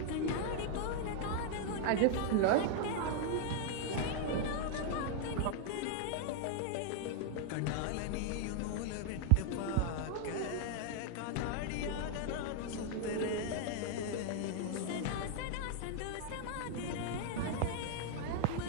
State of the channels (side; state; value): both; different; correlation 0.00